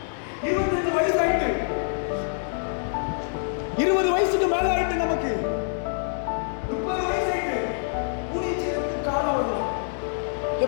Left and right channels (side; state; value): right; silent; digital silence